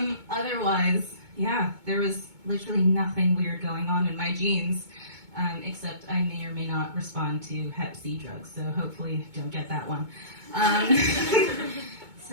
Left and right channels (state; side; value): late; left; 2.2 ms